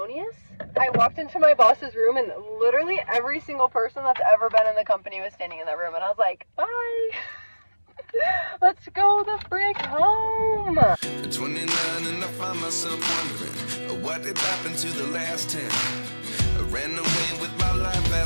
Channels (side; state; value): both; inverted; correlation -1.00